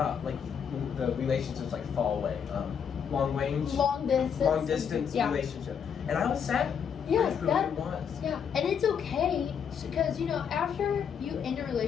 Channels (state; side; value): quieter; right; 7.4 dB